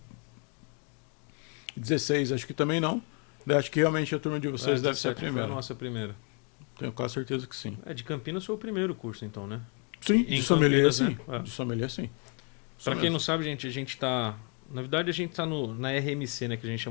16, acho que também não. Acho que realmente a turma de vocês deve ser a primeira. Foi a nossa primeira. Tenho quase certeza que sim. De Campinas foi o primeiro curso, então, né? Sim, em de sommelier, Campinas, sim. né? De sommelier, sim. Para quem não sabe, gente, a gente tá... Na verdade, a gente tá na RMC, né? Que a gente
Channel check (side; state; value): right; quieter; 37.5 dB